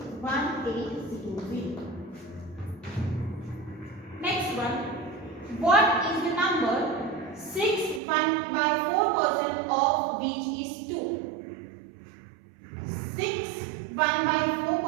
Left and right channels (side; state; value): left; drops out; at 8.0 s